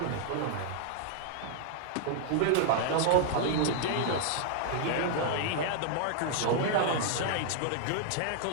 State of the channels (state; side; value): different; both; correlation 0.00